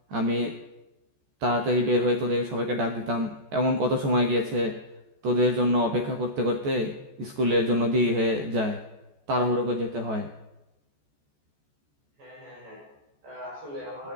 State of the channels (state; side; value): late; left; 14 ms